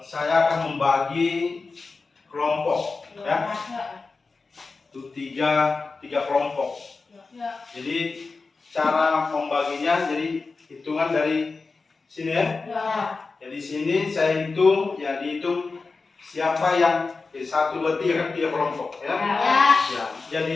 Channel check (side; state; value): right; quieter; 4.1 dB